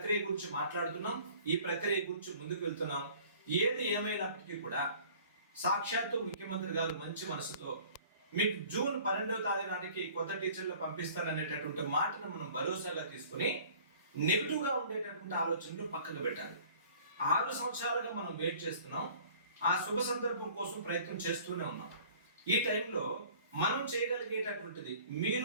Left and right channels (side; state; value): both; inverted; correlation -0.50